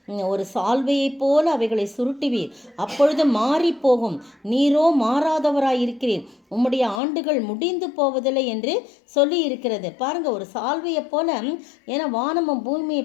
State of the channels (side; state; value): right; drops out; at 7.0 s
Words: ஒரு சால்வையை போல அவைகளை சுருட்டுவீர், அப்பொழுது மாறி போகும், நீரோ மாறாதவராய் இருக்கிறீர், உம்முடைய ஆண்டுகள் முடிந்து போவதில்லை என்று சொல்லி இருக்கிறது. பாருங்க, ஒரு சால்வையை போல, ஏன்னா வானமும் பூமியை